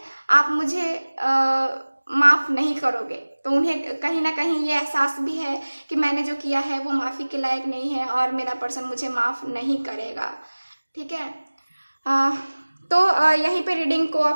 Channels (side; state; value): both; inverted; correlation -1.00